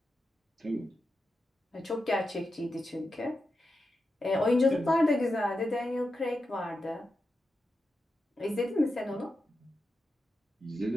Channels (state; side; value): normal; both; correlation 0.89